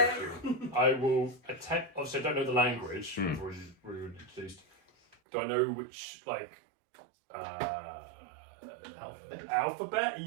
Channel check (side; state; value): left; drops out; at 5.2 s